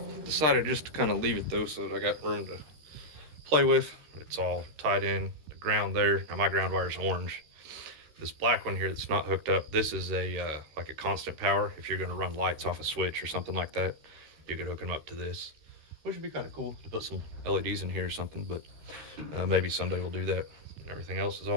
Decided just to kind of leave it though, so that I got room to play with. It's all tied in, the ground there. Now my ground wire is orange. This black one here that's not hooked up, this is a like a constant power. If you're going to run lights off a switch or something like that, you could hook them up to this, which would be kind of cool to put some LEDs in here or something. But maybe someday we'll do that. Everything else is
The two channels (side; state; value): left; late; 13 ms